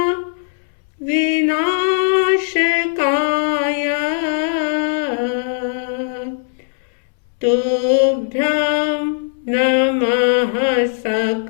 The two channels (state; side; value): silent; right; 67 dB below the other